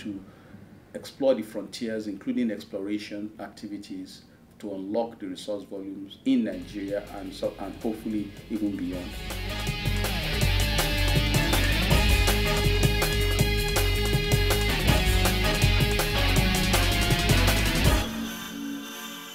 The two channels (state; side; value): identical; both; correlation 1.00